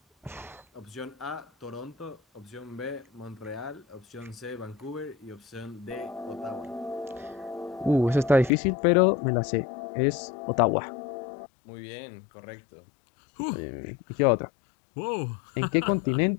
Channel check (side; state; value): right; drops out; at 8.5 s